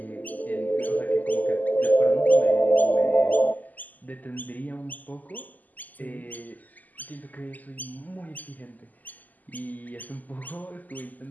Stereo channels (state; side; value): late; right; 0.081 ms